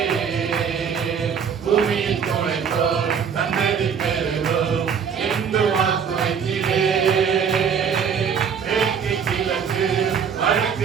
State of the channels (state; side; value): quieter; left; 7.0 dB